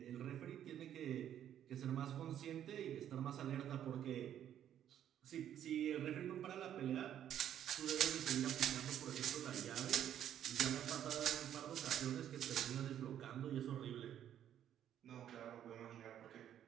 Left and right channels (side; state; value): left; quieter; 10.4 dB